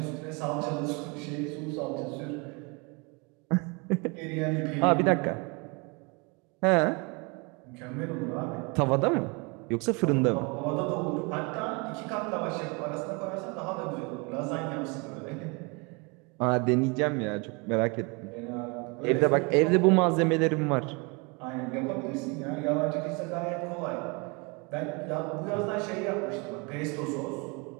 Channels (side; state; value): left; quieter; 30.2 dB